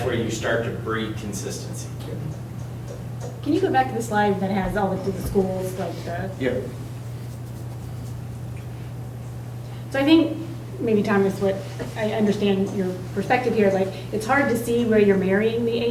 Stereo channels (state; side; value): identical; both; correlation 1.00